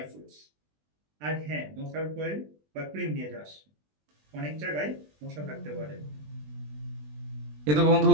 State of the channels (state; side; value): late; left; 20 ms